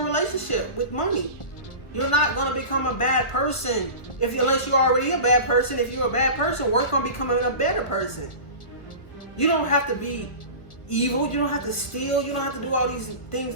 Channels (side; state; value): right; late; 1.3 ms